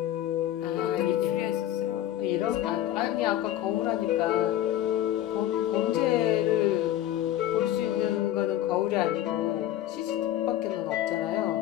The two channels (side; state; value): right; quieter; 12.8 dB